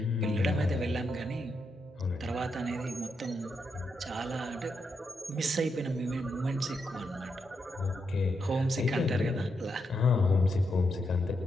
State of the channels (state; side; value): normal; both; correlation 0.82